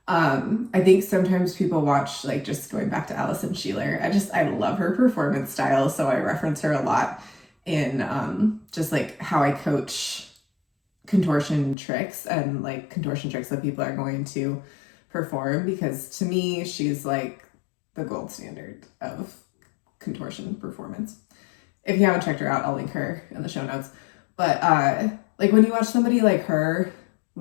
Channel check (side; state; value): right; drops out; at 11.8 s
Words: I think sometimes people watch, like, just going back to Allison Sheeler, I love her performance style, so I reference her a lot in just like how I coach contortion tricks and like contortion tricks that people are going to perform, because to me she's like the gold standard of contortion performance. If you haven't checked her out, I'll link her in the show notes. But like when you watch somebody like her